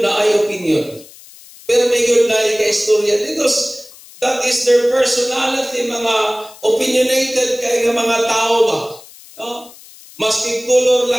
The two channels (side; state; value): left; noise; hiss, 21 dB below the sound